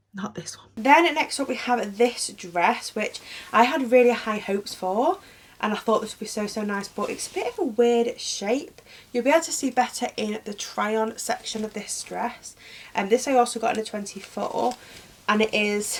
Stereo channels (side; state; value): both; identical; correlation 1.00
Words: not this one. Then next up we have this dress, which I had really high hopes for, and I thought this would be so nice, but it's a bit of a weird shape. You'll be able to see better in the try on section of this dress. And this I also got in a 24, and it